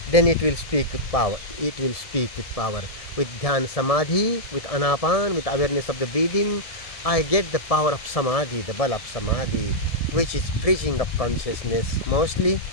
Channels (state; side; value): late; right; 1.7 ms